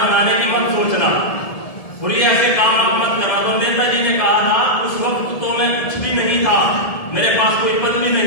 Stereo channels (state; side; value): late; right; 1.7 ms